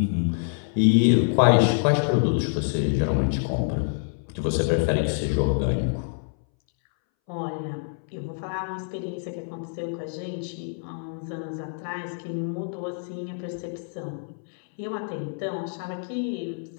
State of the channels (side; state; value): right; silent; 61 dB below the other